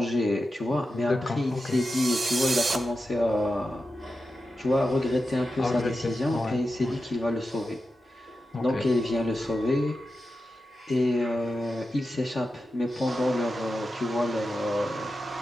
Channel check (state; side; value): normal; both; correlation 0.90